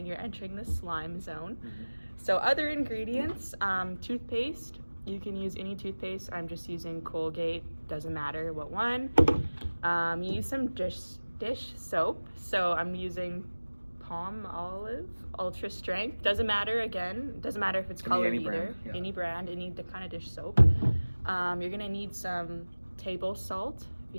you're entering the slime zone. So other ingredients, toothpaste. You can use any toothpaste. I'm just using Colgate, doesn't matter what one. You use some dish soap. So I'm using Palmolive Ultra Strength. Doesn't matter, again, doesn't matter if it's colored either. Brand, yeah. Any brand, the kind of dish soap. You're gonna need some table salt if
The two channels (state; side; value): inverted; both; correlation -1.00